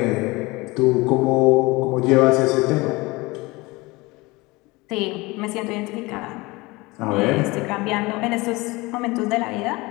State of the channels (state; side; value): quieter; right; 23.0 dB